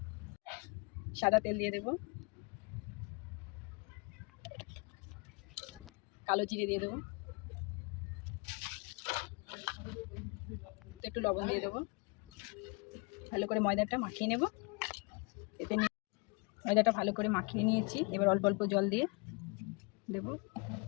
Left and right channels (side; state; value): right; quieter; 29.8 dB